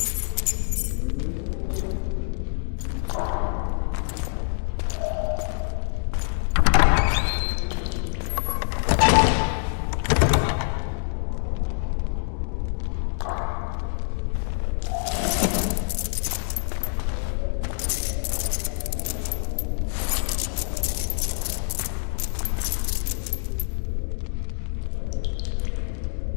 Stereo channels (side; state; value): right; silent; 61 dB below the other